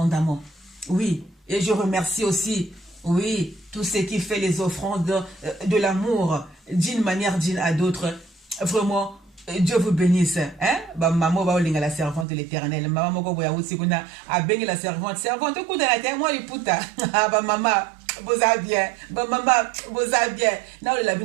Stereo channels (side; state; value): left; drops out; at 12.2 s